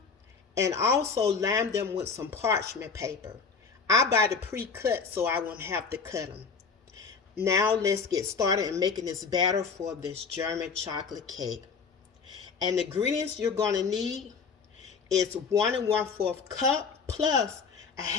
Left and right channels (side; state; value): right; quieter; 5.4 dB